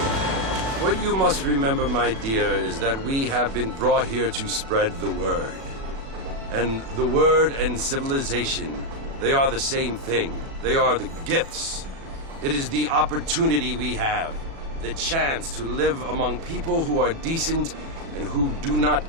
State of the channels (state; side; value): late; left; 36 ms